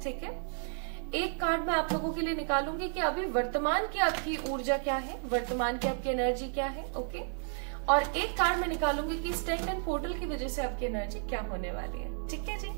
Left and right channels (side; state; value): left; silent; 56 dB below the other